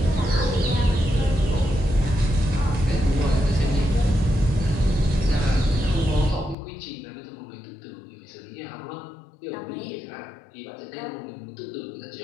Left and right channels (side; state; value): right; drops out; at 6.6 s